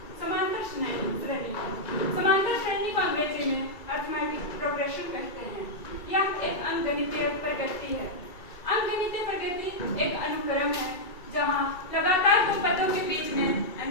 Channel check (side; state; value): right; late; 2.3 ms